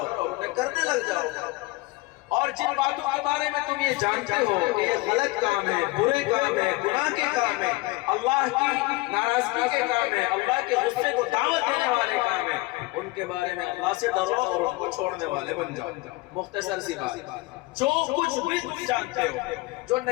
اور انہیں کرنے لگ جاؤ۔ اور جن باتوں کے بارے میں تم یہ جانتے ہو کہ یہ غلط کام ہے، برے کام ہے، گناہ کے کام ہے، اللہ کی ناراضگی کے کام ہے، اللہ کے غصے کو دعوت دینے والے کام ہے، ان کے بارے میں اللہ سے ڈرو اور ان کو چھوڑنے والے بن جاؤ۔ مختصر سی بات، جو کچھ بھی جانتے ہو، جو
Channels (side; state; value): right; quieter; 21.8 dB